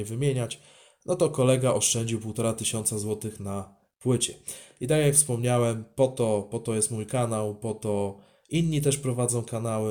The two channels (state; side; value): identical; both; correlation 1.00